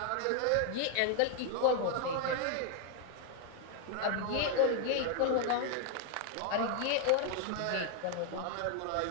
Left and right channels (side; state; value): both; different; correlation 0.00